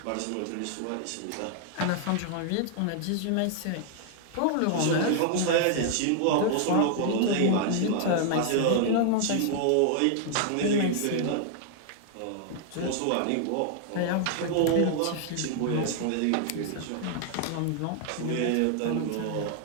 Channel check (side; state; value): both; different; correlation 0.00